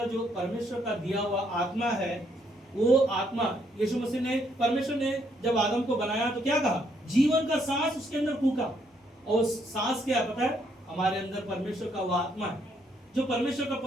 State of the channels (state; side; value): normal; both; correlation 0.72